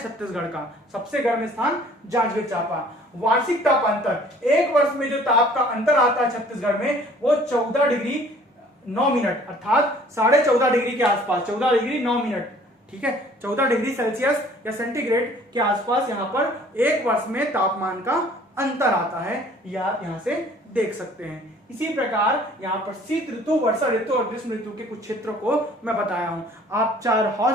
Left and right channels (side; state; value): both; normal; correlation 0.54